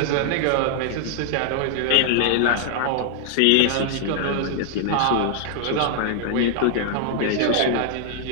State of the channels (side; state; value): both; different; correlation 0.00